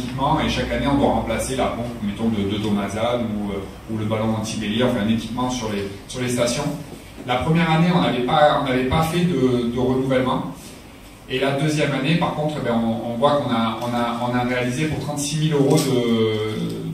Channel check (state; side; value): identical; both; correlation 1.00